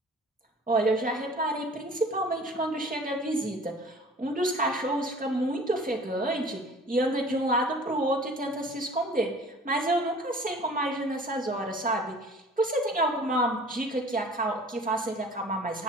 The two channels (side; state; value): both; normal; correlation 0.47